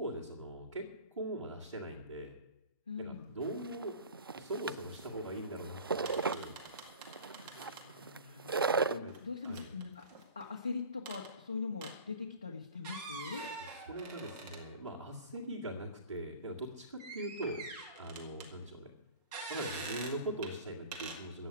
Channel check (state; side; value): inverted; both; correlation -0.40